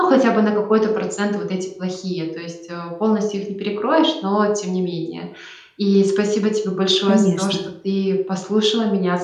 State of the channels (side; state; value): both; identical; correlation 1.00